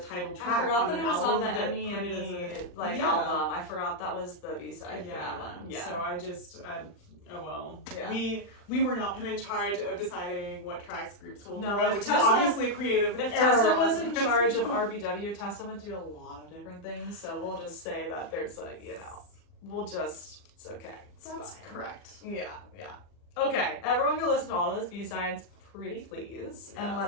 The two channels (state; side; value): late; right; 40 ms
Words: track. I forgot that it was on the Emmy album. I forgot that was the B-side for that one. Yeah. So I just, oh well. Yeah. We were not put in charge of deciding what tracks groups will do, which is obviously creative. If Tessa was in charge of RBW, Tessa would do a lot of different things. So we'll just say that there's it's okay. That's fine. Correct. Yeah. Okay, everyone can listen to all those B-sides. Pretty please. Yes. And